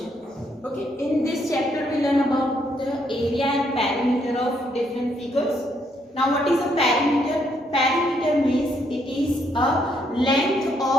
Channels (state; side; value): normal; both; correlation 0.73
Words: Okay, in this chapter we learn about the area and perimeter of different figures. Now what is a perimeter? Perimeter means it is a length